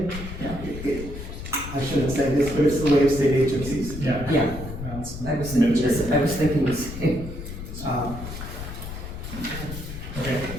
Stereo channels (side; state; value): left; noise; rumble, 9 dB below the sound